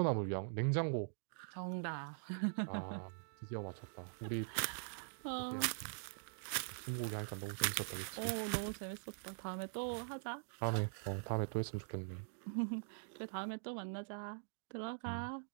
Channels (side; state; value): left; silent; digital silence